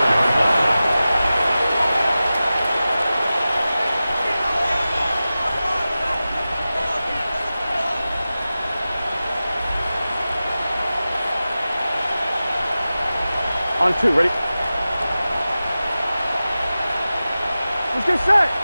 On 2, ready? Let's get set.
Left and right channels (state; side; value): inverted; both; correlation -0.95